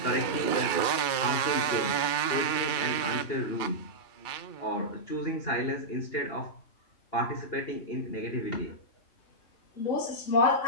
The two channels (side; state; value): right; late; 2.4 ms